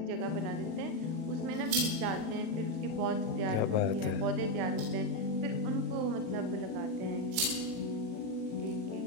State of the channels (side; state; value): left; late; 37 ms